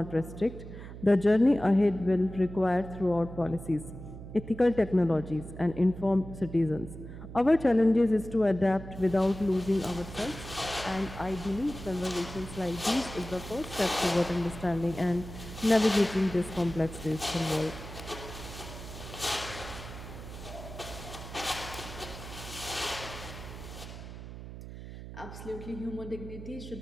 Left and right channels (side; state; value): right; noise; hum, 12 dB below the sound